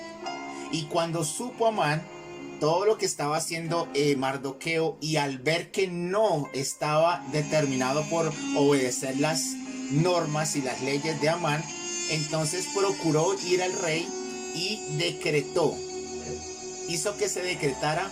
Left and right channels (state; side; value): identical; both; correlation 1.00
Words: Y cuando supo Amán todo lo que estaba haciendo Mardoqueo, y al ver que no estaba determinado por obedecer las normas y las leyes de Amán, entonces procuró ir al rey y hizo que se decretara